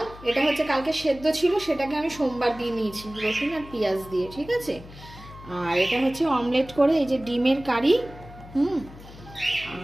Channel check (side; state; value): left; noise; hum, 18 dB below the sound